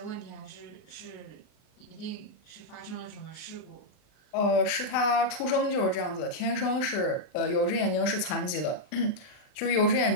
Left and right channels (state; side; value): late; right; 39 ms